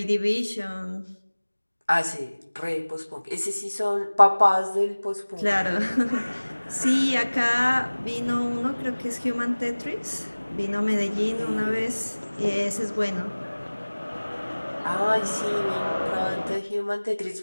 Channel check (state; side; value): inverted; both; correlation -1.00